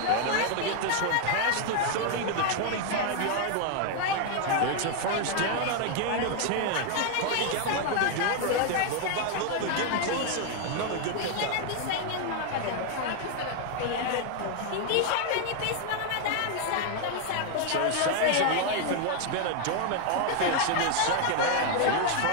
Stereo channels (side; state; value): both; different; correlation 0.00